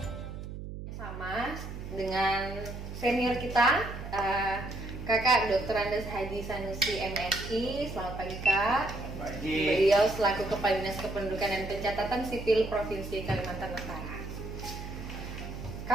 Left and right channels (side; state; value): right; noise; hum, 9 dB below the sound